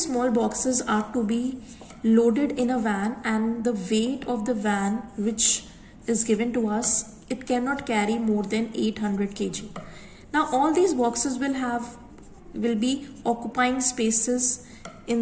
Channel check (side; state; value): both; identical; correlation 1.00